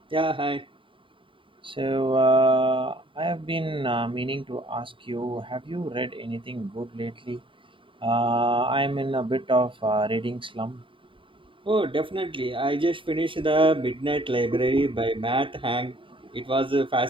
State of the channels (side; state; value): left; late; 0.25 ms